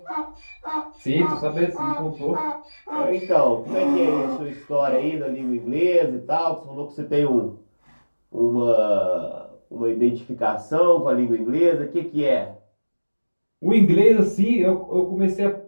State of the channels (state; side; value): inverted; both; correlation -1.00